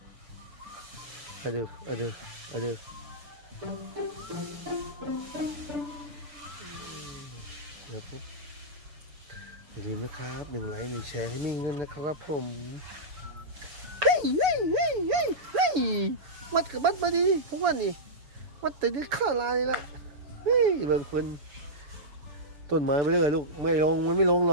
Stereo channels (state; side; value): late; left; 7.0 ms